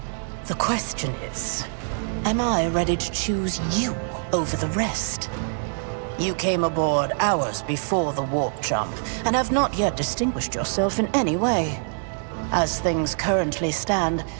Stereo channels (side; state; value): left; silent; digital silence